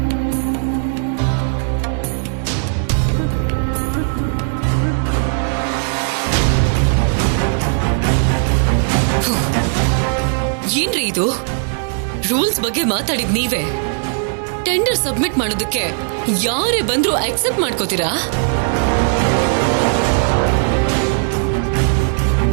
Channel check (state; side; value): silent; left; 68 dB below the other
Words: ಏನ್ರಿ ಇದು? ರೂಲ್ಸ್ ಬಗ್ಗೆ ಮಾತಾಡಿದ್ ನೀವೇ. ಟೆಂಡರ್ ಸಬ್ಮಿಟ್ ಮಾಡೋದಕ್ಕೆ ಯಾರೇ ಬಂದ್ರು ಅಕ್ಸೆಪ್ಟ್ ಮಾಡ್ಕೋತೀರಾ?